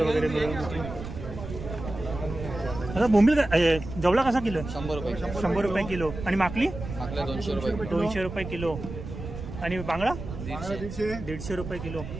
वगैरे मिळून. आता बोंबील जवळा कसा किलो? 100 रुपये. 100 रुपये किलो. आणि माकली? आपल्या 200 रुपये. 200 रुपये किलो. आणि बांगडा 150. 150 रुपये किलो.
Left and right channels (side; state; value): right; noise; rumble, 9 dB below the sound